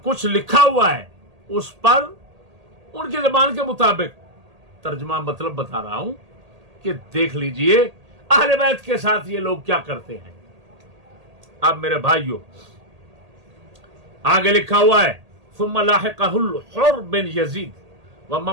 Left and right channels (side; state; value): left; late; 1.8 ms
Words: کچھ لکھا ہوا ہے اس پر ان کی زبان کے مطابق ترجمہ مطلب بتا رہا ہوں کہ دیکھ لیجئے اہل بیت کے ساتھ یہ لوگ کیا کرتے ہیں۔ اب میرے بھائیوں آگے لکھا ہوا ہے ثم لاحقہ الحر بن یزید